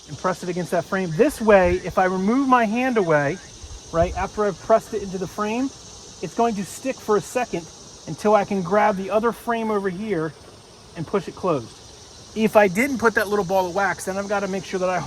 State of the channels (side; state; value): both; identical; correlation 1.00